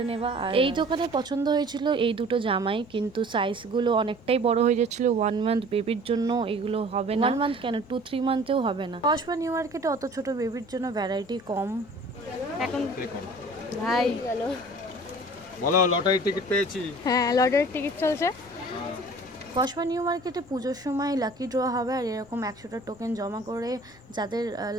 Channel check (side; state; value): both; normal; correlation 0.47